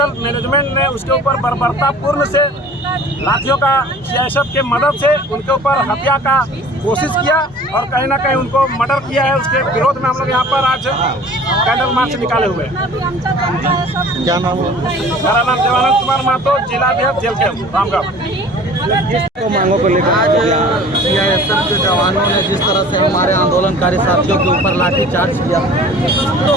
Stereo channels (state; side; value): normal; both; correlation 0.46